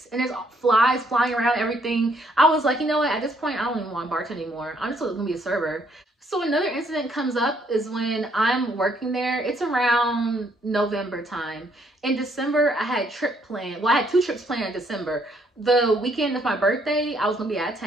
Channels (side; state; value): both; normal; correlation 0.68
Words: And there's flies flying around everything. I was like, you know what? At this point, I don't even want to bartend anymore. I'm just going to be a server. So another incident comes up is when I'm working there. It's around November time. In December, I had a trip planned. Well, I had 2 trips planned in December. The weekend of my birthday, I was going to be out of